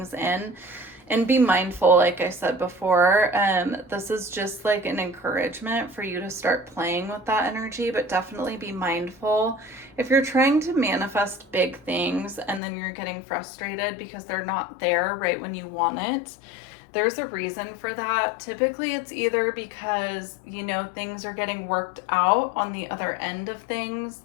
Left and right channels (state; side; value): drops out; right; at 12.6 s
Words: in. And be mindful, like I said before, this is just like an encouragement for you to start playing with that energy, but definitely be mindful. If you're trying to manifest big things and then you're getting frustrated because they're not there right when you want it, there's a reason for that. Typically it's either because, you know, things are getting worked out on the other end of things,